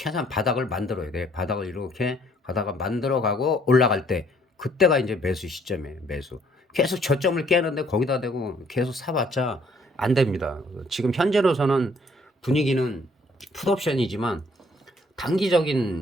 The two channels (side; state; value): both; normal; correlation 0.63